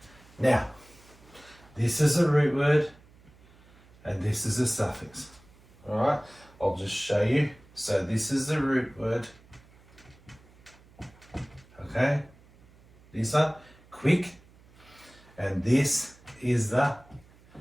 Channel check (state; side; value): noise; right; hum, 27 dB below the sound